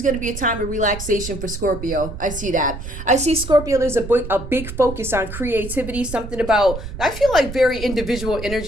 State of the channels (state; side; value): noise; right; rumble, 9 dB below the sound